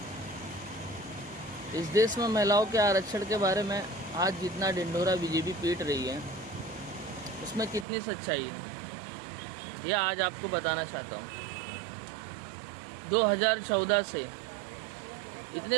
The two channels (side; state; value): left; drops out; at 7.9 s